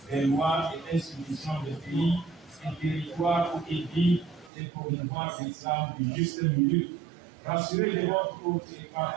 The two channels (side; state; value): left; drops out; at 4.5 s